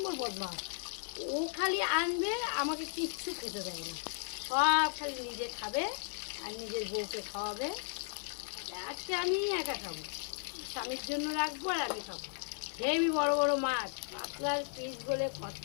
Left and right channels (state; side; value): silent; right; 54 dB below the other